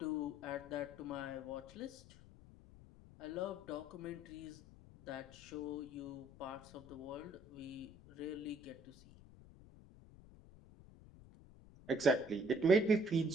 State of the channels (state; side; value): noise; left; rumble, 20 dB below the sound